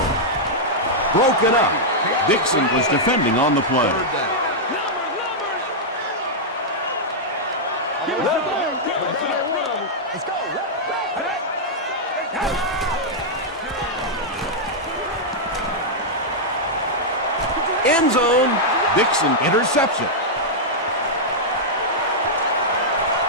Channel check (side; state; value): both; normal; correlation -0.06